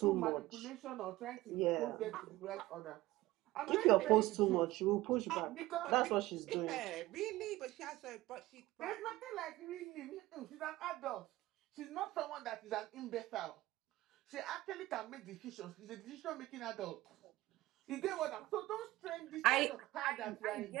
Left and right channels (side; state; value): left; quieter; 17.6 dB